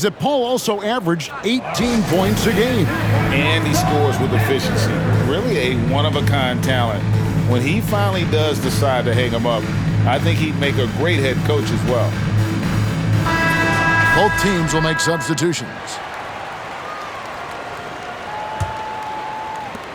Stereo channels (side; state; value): both; identical; correlation 1.00